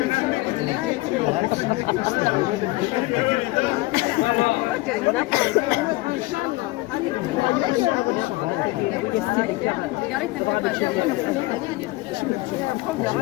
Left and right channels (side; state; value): right; quieter; 20.6 dB